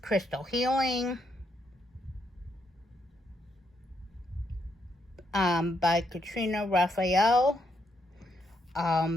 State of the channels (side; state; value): both; normal; correlation 0.77